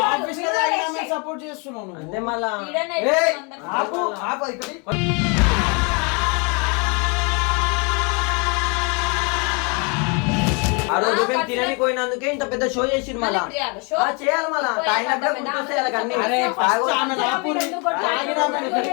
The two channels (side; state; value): right; quieter; 33.4 dB